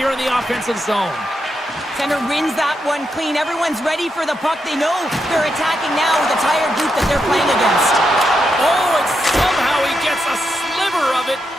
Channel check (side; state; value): both; normal; correlation 0.84